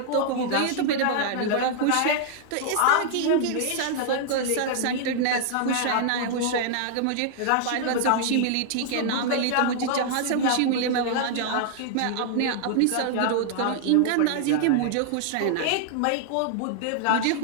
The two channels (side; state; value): both; different; correlation -0.01